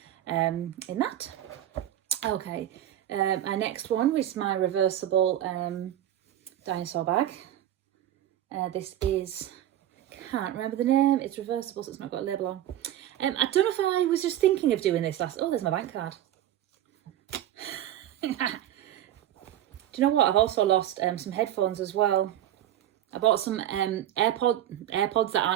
in that. Okay, our next one was my reversible dinosaur bag. This is, can't remember the name, it's reversible, so it's not got a label on. I don't know if I was just thinking of doing this last... Oh, there's my bank card. Do you know what? I've also lost some headphones as well. I bought some AirPods that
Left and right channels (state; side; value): quieter; left; 12.2 dB